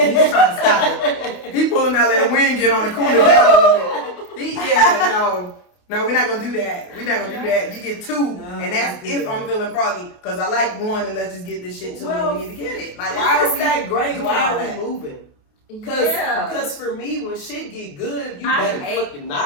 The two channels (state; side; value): late; right; 28 ms